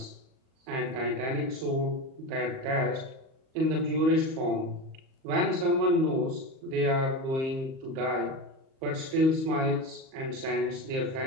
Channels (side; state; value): left; late; 38 ms